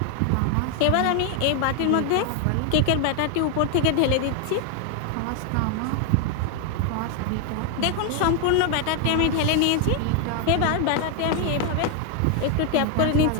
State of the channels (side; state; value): both; different; correlation 0.00